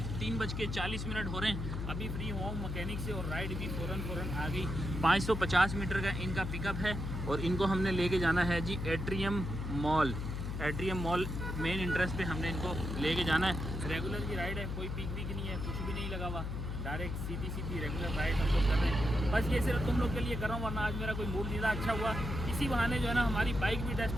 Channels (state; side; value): noise; left; hum, 4 dB below the sound